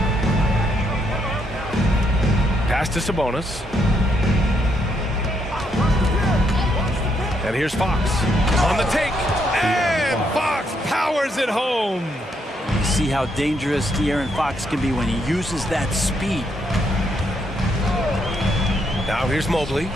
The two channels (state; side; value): normal; both; correlation 0.76